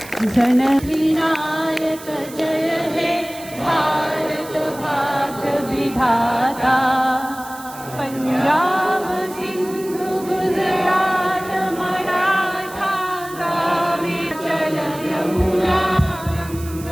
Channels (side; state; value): right; noise; hiss, 17 dB below the sound